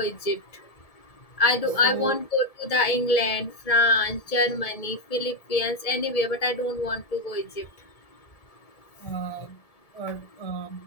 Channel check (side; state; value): right; late; 1.7 ms